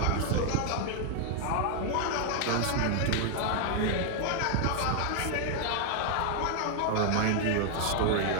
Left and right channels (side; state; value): both; different; correlation 0.00